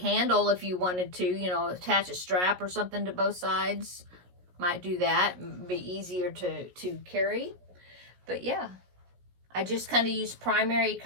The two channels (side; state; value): left; late; 17 ms